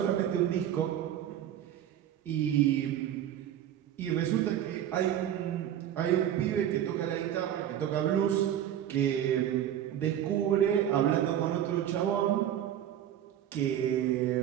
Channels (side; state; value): left; quieter; 10.8 dB